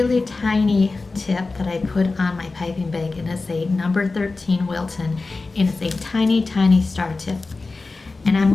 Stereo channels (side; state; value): right; quieter; 3.7 dB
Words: tiny tip that I put on my piping bag, and it's a number 13 Wilton, and it's a tiny, tiny star tip. And I'm